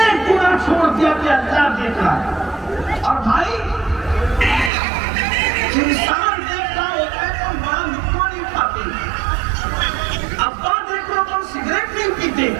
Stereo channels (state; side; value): drops out; left; at 4.7 s